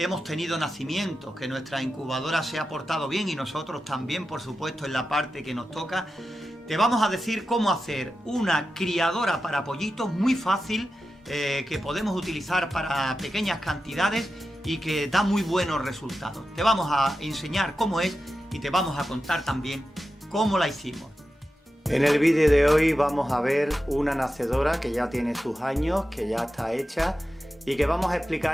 tenido nacimientos, que nuestra incubadora se ha portado bien y nosotros también, por supuesto, en la parte que nos toca, te vamos a decir cómo hacer una criadora para pollitos muy fácil, que podemos utilizar para pequeñas cantidades y que da muy buenos resultados. Te vamos a enseñar cómo es y te vamos a contar también cómo la hicimos. En el vídeo de hoy vamos a ver una nacedora que ya tiene sus años, que ya está hecha y que vamos a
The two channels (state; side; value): normal; both; correlation 0.91